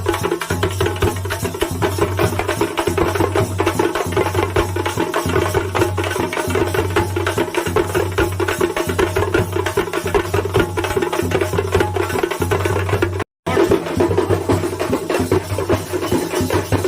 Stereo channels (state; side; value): identical; both; correlation 1.00